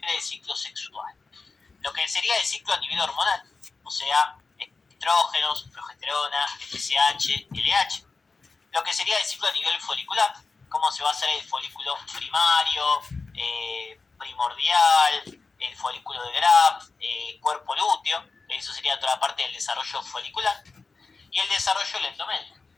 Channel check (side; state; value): right; quieter; 4.2 dB